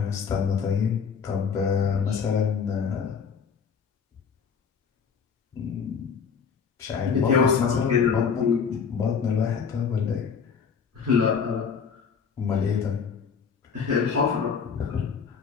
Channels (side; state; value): right; quieter; 6.3 dB